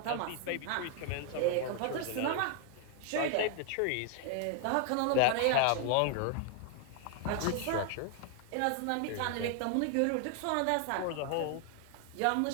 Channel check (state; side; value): different; both; correlation 0.00